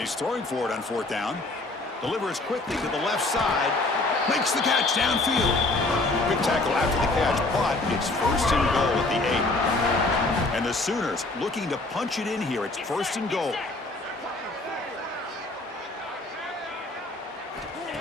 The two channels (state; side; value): quieter; right; 3.0 dB